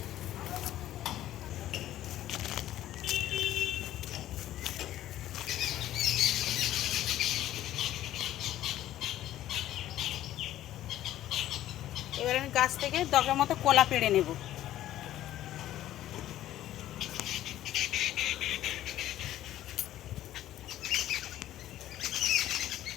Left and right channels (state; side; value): quieter; right; 13.3 dB